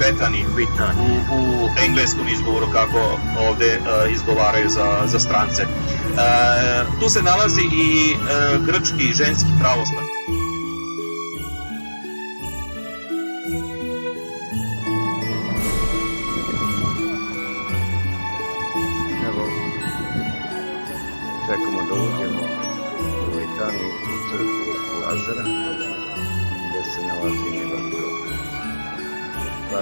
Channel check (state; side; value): inverted; both; correlation -1.00